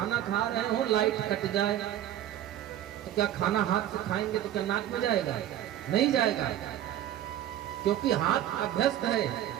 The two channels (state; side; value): quieter; left; 12.0 dB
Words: खा रहे हो, लाइट कट जाए तो क्या खाना हाथ से खाएंगे तो क्या नाक में जाएगा? नहीं जाएगा, क्योंकि हाथ अभ्यस्त है